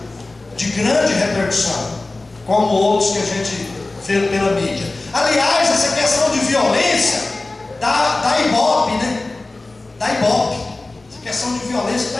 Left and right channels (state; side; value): quieter; right; 3.1 dB